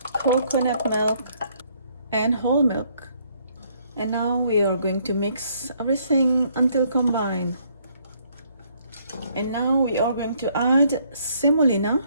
coconut milk, and whole milk. And now we are going to mix everything until combined. And now we are going to add semolina.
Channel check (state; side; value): inverted; both; correlation -0.67